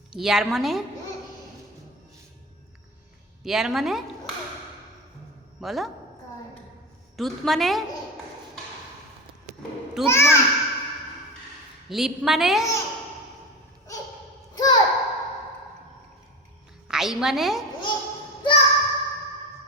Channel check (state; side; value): normal; both; correlation 0.26